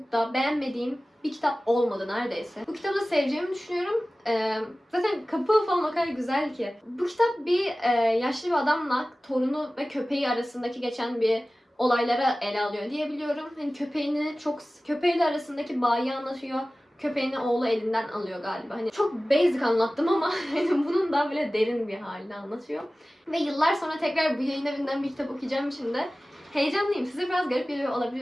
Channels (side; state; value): both; normal; correlation 0.97